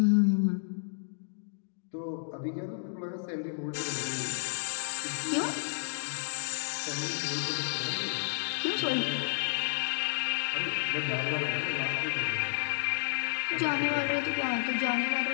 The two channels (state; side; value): silent; right; digital silence